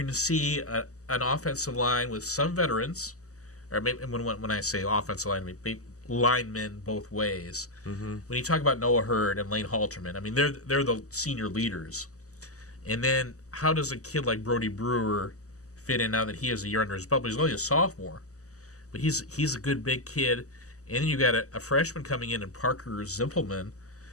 to see an offensive line with some veterans, or maybe when I say offensive line, maybe linemen both ways. When you talk about Noah Hurd and Lane Halterman, I mean they're the senior leaders. And then how does a kid like Brody Brewer fit in now that he has a year under his belt? But he's only a sophomore, but he's a good big kid. And then you got a freshman coming in Parker Zimpelman,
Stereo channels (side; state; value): right; late; 0.66 ms